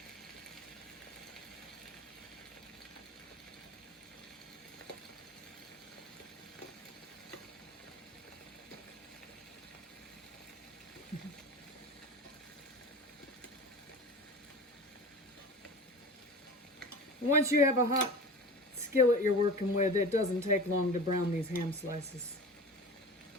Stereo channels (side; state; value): both; normal; correlation 0.34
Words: Once you have a hot skillet you're working with, it doesn't take long to brown these ham slices.